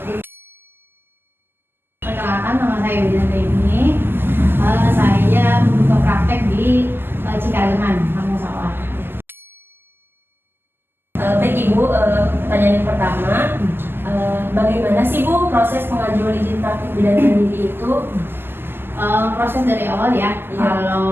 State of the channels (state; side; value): late; left; 0.10 ms